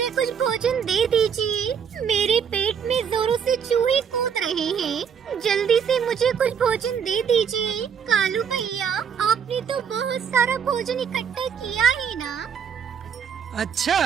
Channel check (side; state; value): left; quieter; 7.5 dB